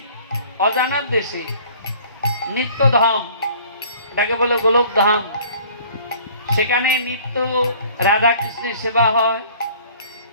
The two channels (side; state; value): both; inverted; correlation -0.51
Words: অজানার দেশে, নিত্যধাম, এটাকে বলে গোলক ধাম। সেখানে নিত্য রাধা কৃষ্ণের সেবা হয়,